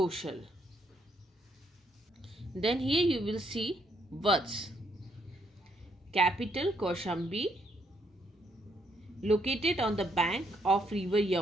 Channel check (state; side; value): normal; both; correlation 0.72